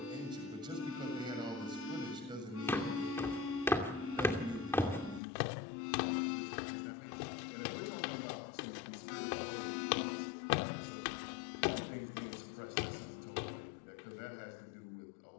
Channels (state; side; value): drops out; right; at 5.2 s